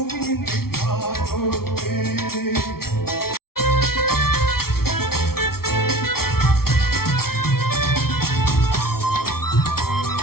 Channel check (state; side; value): late; right; 0.94 ms